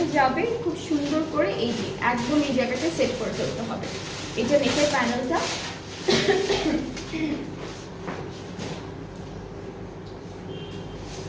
যাবে খুব সুন্দর করে, এই যে একদম এই জায়গাটা সেট করে ফেলতে হবে। এটা নেকের প্যানেলটা।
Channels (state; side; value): identical; both; correlation 1.00